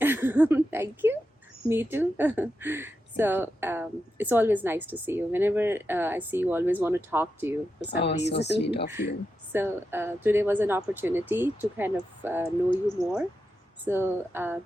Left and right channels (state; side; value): normal; both; correlation 0.88